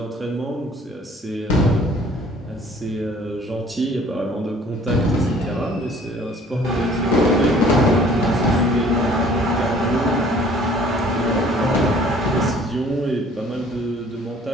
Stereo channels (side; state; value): both; normal; correlation 0.54